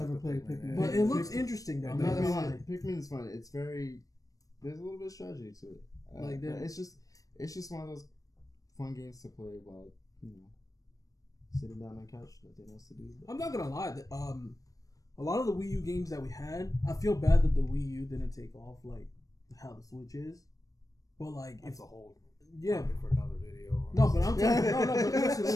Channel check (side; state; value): right; late; 0.17 ms